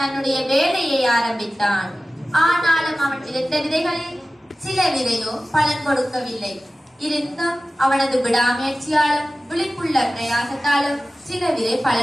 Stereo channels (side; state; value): both; normal; correlation 0.96